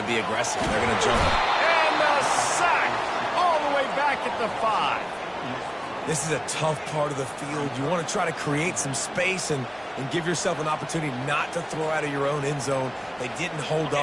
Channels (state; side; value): identical; both; correlation 1.00